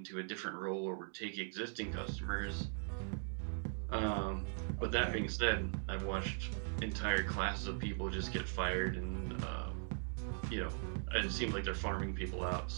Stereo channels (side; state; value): left; silent; 51 dB below the other